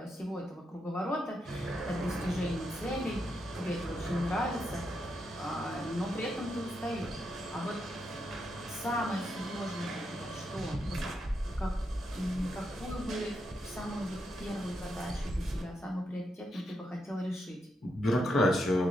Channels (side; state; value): both; normal; correlation 0.82